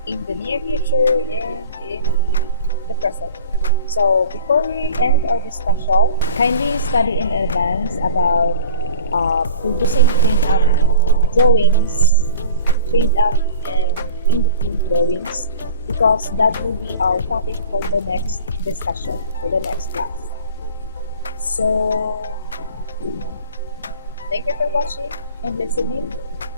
in the near future and in the present. So before we end our discussion, kindly study in advance about producing print-up drawings, print-up and in-between drawings because that will be our topic for the next discussion, for the next class. So thank you for watching and listening.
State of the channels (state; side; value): inverted; both; correlation -0.42